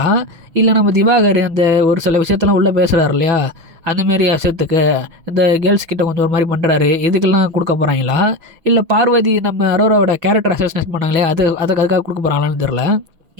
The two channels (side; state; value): left; late; 6.1 ms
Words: இல்லை நம்ம திவாகர் அந்த ஒரு சில விஷயத்தெல்லாம் உள்ளே பேசுகிறார் இல்லையா, அந்தமாரி விஷயத்துக்கு இந்த கேர்ள்ஸ் கிட்ட கொஞ்சம் ஒரு மாதிரி பண்ணுறாரு, இதுக்கெல்லாம் கொடுக்க போகிறாங்களா, இல்லை பார்வதி நம்ம அரோராவோட கேரக்டர் அசோசினேட் பண்ணாங்களே அதுக்காக கொடுக்க போகிறாங்களான்னு தெரில.